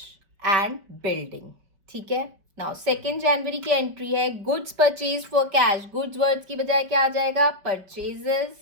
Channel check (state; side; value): late; left; 5.1 ms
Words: and building. ठीक है? Now 2nd January की एंट्री है goods purchased for cash. goods words की बजाय क्या आ जाएगा? purchases.